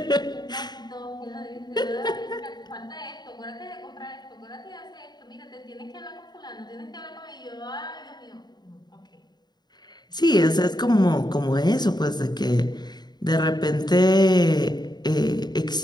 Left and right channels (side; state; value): right; late; 0.20 ms